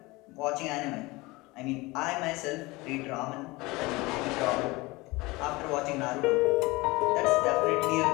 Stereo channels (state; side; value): quieter; right; 22.5 dB